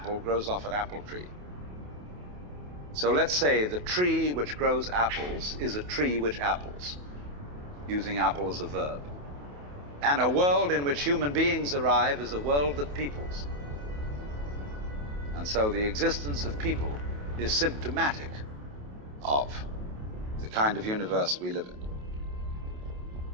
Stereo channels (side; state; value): left; late; 28 ms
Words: grows off an apple tree. So let's say the tree which grows apples is a tree which apples, using apple as a verb. And a world in which human beings arrive is a world that peoples. And so the existence of people is symptomatic of the kind of universe we live in.